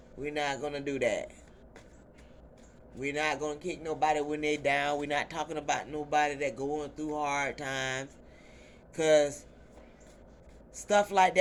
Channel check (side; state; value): both; identical; correlation 1.00